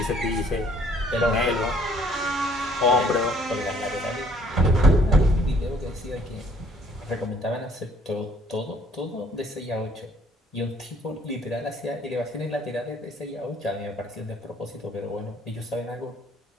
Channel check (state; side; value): normal; both; correlation 0.60